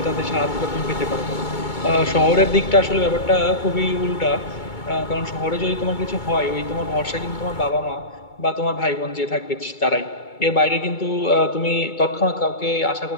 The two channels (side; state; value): right; late; 2.2 ms